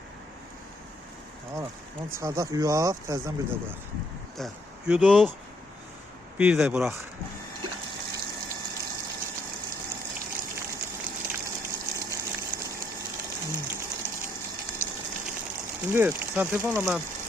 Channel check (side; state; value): both; normal; correlation 0.70